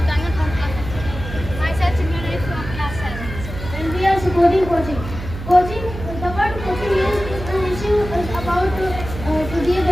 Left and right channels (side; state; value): right; noise; hum, 9 dB below the sound